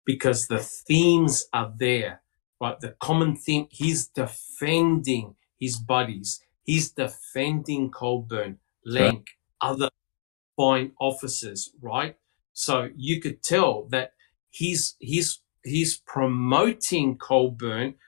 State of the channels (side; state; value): right; silent; 61 dB below the other